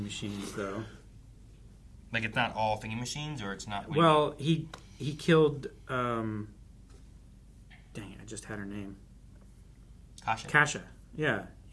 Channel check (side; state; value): both; identical; correlation 1.00